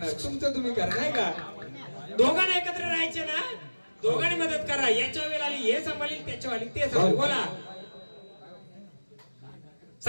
तुमचं तुम्ही करा नाही का? दोघांना एकत्र राहायचे ना. दोघांनी मदत करा. याच्या वेळेला आली हे सांभाळील त्याच्या वाली ते सांभाळ. बोला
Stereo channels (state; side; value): inverted; both; correlation -1.00